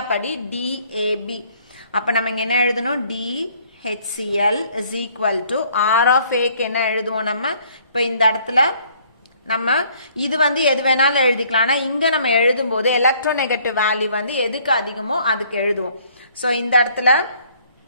படி DAB அப்போ நம்ம இங்கே என்ன எழுதணும்? DHCl is equal to R of Aக்கு என்ன எழுதுவோம் நம்ம? இப்போ இந்த இடத்துல நம்ம இது வந்து எது வேணாலும் எழுதிக்கலாம். ஆனால் இங்கே நம்ம எழுதும் போது எலக்ட்ரோநெகட்டிவ் வேல்யூ வந்து எதுக்கு அதிகமோ அதுக்கு எழுதுவோம். ஸோ இந்த இடத்துல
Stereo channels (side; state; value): both; inverted; correlation -0.61